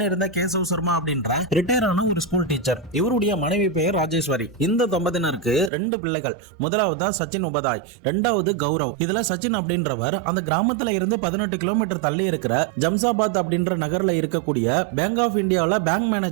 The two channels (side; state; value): left; drops out; at 5.7 s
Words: கேசவ் சர்மா அப்படின்ற ரிட்டையர் ஆன ஒரு ஸ்கூல் டீச்சர். இவருடைய மனைவி பெயர் ராஜேஸ்வரி. இந்த தம்பதியினருக்கு 2 பிள்ளைகள். முதலாவது தான் சச்சின் உபாதாய், இரண்டாவது கௌரவ். இதுல சச்சின் அப்படின்றவர் அந்த கிராமத்துல இருந்து 18 கிலோமீட்டர் தள்ளி இருக்கிற ஜம்சாபாத் அப்படின்ற நகர்ல இருக்கக்கூடிய பேங்க் ஆஃப் இந்தியாவில் பேங்க்